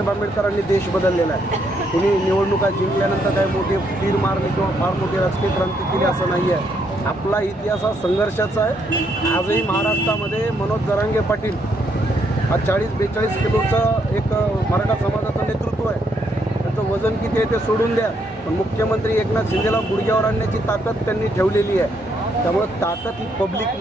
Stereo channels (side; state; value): both; normal; correlation 0.74